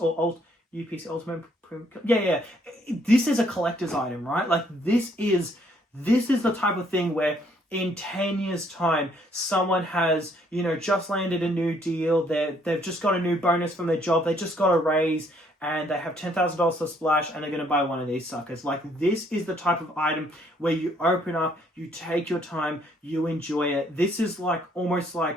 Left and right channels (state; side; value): normal; both; correlation 0.66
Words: UPC Ultimate Premium? Yeah. This is a collector's item, right? Like, this is the type of thing where in 10 years' time, someone has, just landed a new deal. They've just got a new bonus from their job. They just got a raise, and they have $10,000 to splash, and they're going to buy one of these suckers. Like, this is the type of item where you open up, you take your time, you enjoy it. This is like